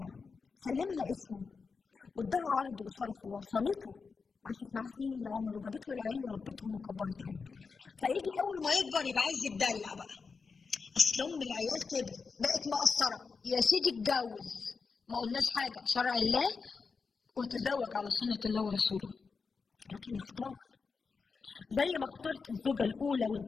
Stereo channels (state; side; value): quieter; right; 5.0 dB